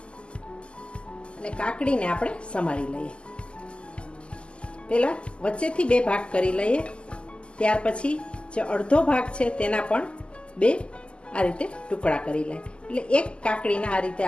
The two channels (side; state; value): right; late; 0.052 ms